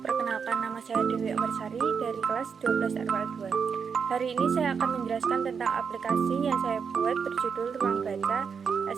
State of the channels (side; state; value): left; quieter; 6.3 dB